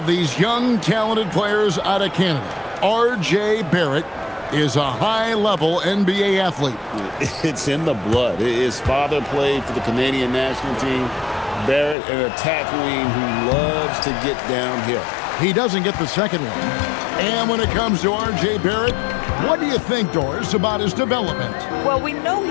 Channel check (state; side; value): drops out; right; at 12.0 s